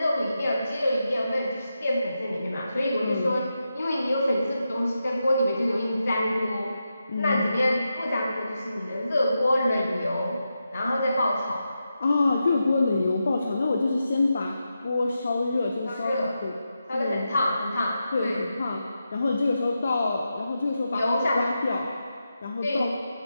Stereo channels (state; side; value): inverted; both; correlation -0.88